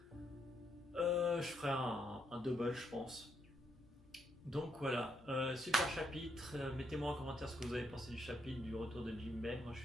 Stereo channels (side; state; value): both; normal; correlation 0.76